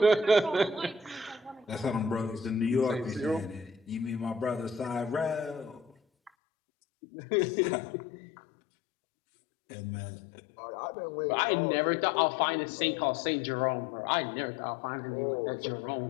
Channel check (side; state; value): right; drops out; at 6.3 s